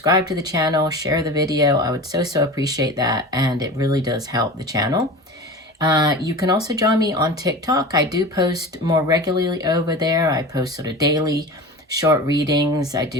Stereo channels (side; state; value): both; normal; correlation 0.32